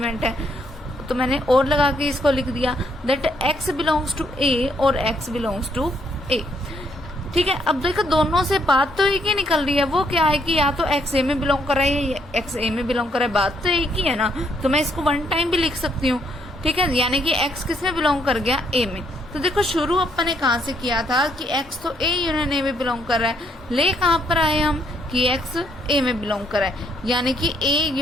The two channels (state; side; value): normal; both; correlation 0.71